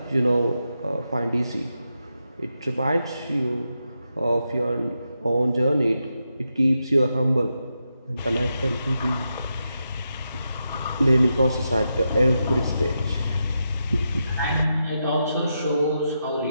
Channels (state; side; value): inverted; both; correlation -0.86